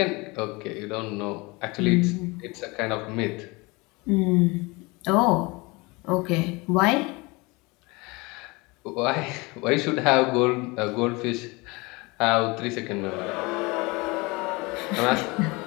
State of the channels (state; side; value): quieter; right; 25.3 dB